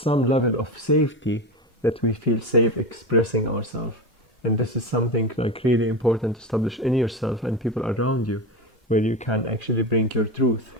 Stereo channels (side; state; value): both; normal; correlation 0.21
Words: level of safety, that we feel safe expressing ourselves. And this is something like really important to establish in yourself and people around you, where you can actually bring your truth.